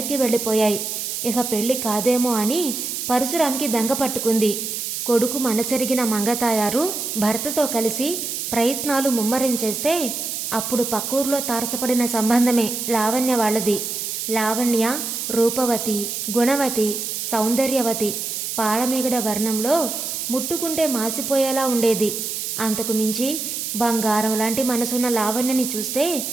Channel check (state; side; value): noise; right; hiss, 4 dB below the sound